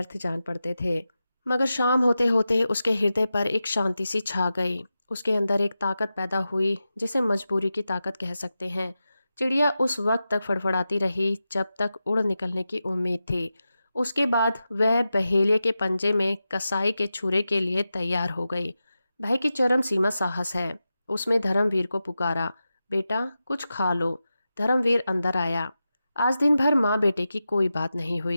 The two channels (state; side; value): inverted; both; correlation -0.92